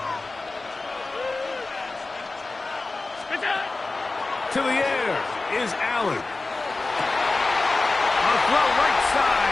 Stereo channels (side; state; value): right; quieter; 3.4 dB